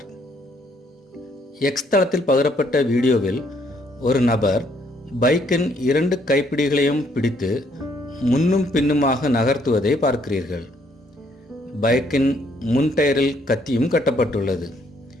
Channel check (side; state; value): both; normal; correlation 0.68